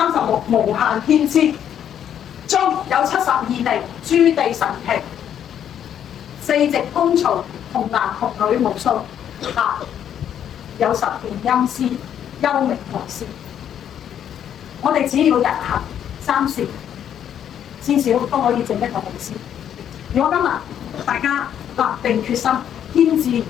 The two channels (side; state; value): right; quieter; 9.5 dB